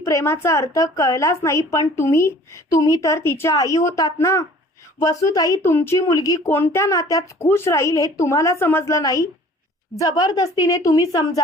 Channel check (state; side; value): normal; both; correlation 0.50